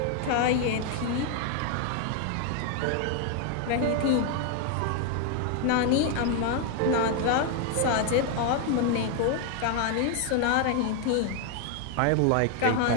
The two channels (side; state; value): both; different; correlation 0.00